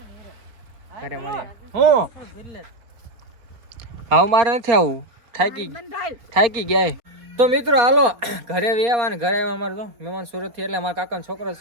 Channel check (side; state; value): left; late; 4.3 ms